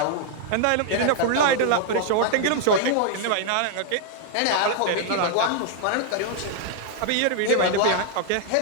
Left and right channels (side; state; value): both; different; correlation 0.00